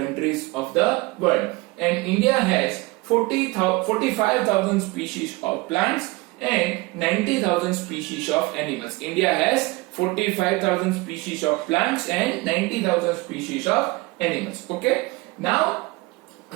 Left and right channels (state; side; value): quieter; left; 22.8 dB